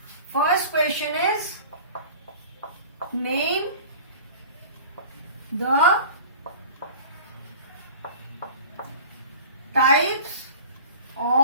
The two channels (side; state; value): both; inverted; correlation -0.40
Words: First question is, name the types